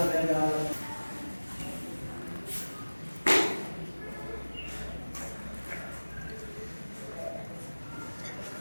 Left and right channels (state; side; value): inverted; both; correlation -1.00